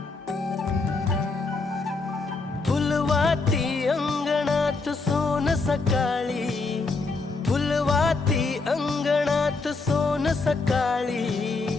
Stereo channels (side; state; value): right; quieter; 3.9 dB